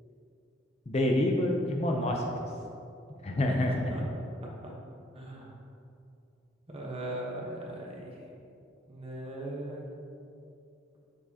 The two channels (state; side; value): normal; both; correlation 0.65